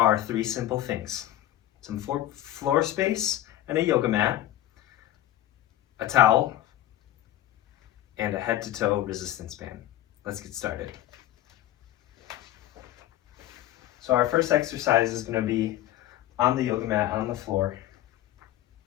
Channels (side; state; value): right; quieter; 13.8 dB